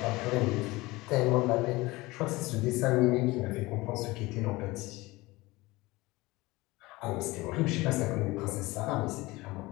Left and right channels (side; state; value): right; quieter; 21.1 dB